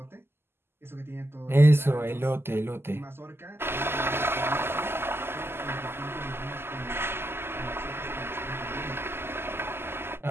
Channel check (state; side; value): late; left; 0.12 ms